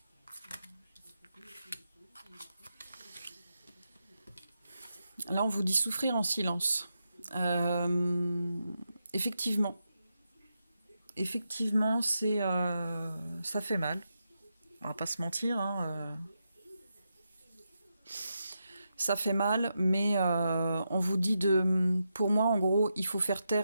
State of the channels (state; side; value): inverted; both; correlation -0.86